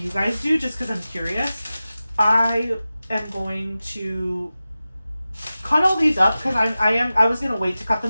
guys do, just because I'm curious. I am going to cut all these up, because I was gonna wait to cut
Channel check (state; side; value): inverted; both; correlation -0.95